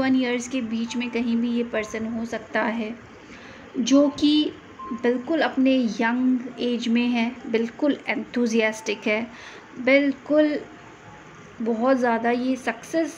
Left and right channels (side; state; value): both; identical; correlation 1.00